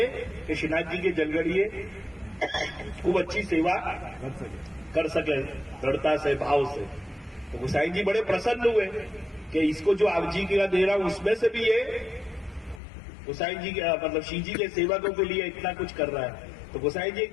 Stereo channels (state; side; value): drops out; right; at 12.8 s